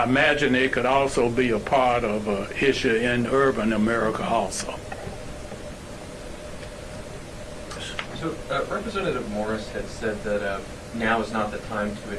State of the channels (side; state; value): both; identical; correlation 1.00